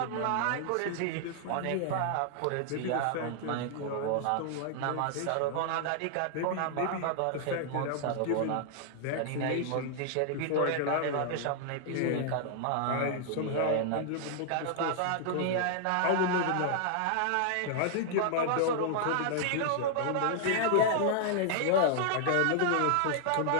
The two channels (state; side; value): different; both; correlation -0.01